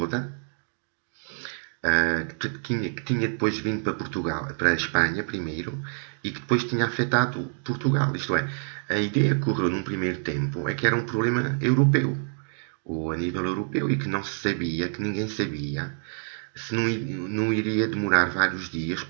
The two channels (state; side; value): silent; left; 60 dB below the other